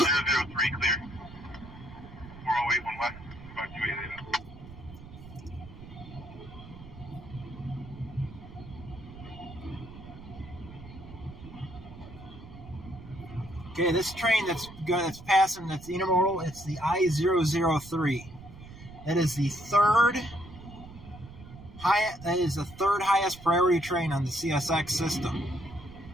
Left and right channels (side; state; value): right; noise; rumble, 16 dB below the sound